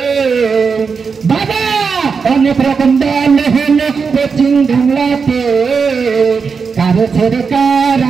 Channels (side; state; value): left; quieter; 5.4 dB